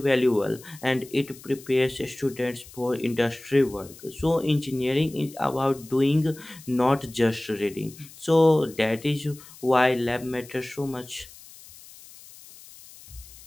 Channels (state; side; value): noise; left; hiss, 20 dB below the sound